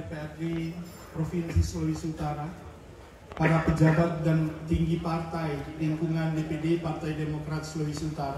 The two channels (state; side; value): identical; both; correlation 1.00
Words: Provinsi Sulawesi Utara, para pejabat dan tinggi partai di lingkungan DPD Partai Demokrat Sulawesi